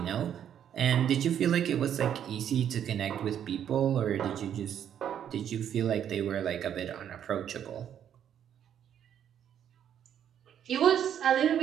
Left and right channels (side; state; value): left; quieter; 9.5 dB